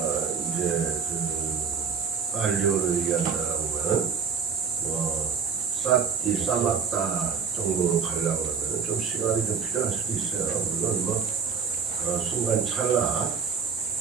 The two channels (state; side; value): quieter; left; 6.2 dB